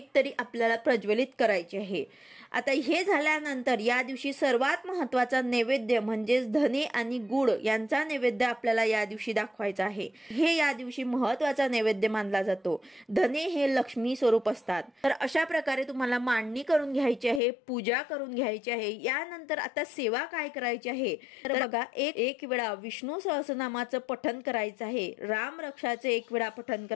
तरी आपल्याला प्रज्वलित करायची आहे। आता हे झाल्यानंतर या दिवशी सर्वात महत्त्वाचा नैवेद्य म्हणजेच धने आणि गुळ यांचा नैवेद्य आपल्याला या दिवशी दाखवायचा आहे। हे या दिवशी महत्त्वाचा नैवेद्य मानला जातो। धने हे लक्ष्मी स्वरूप असतात। तर अशा प्रकारे तुम्हाला मांडणी करून घ्यायची आहे, पूजा करून घ्यायची आहे। यानंतर आता सेवा काय करायची आहे तर बघा, एक वेळा विष्णू सहस्रनामाचं पठण करायचं आहे, राम रक्षाचे एक वेळा पठण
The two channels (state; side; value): drops out; right; at 17.4 s